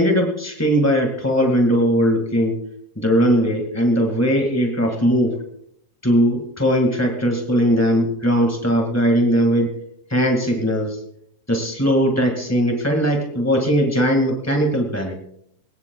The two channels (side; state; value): both; normal; correlation 0.47